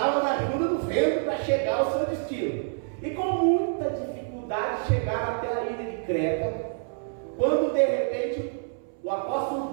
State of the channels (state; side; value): silent; left; 60 dB below the other